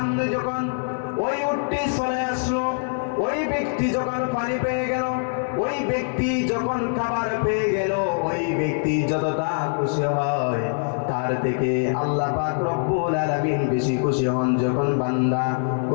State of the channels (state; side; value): silent; right; 63 dB below the other